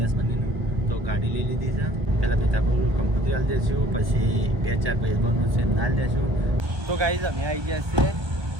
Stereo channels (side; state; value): left; late; 1.2 ms